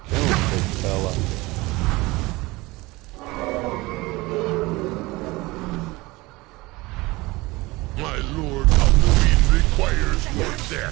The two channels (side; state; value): left; quieter; 21.9 dB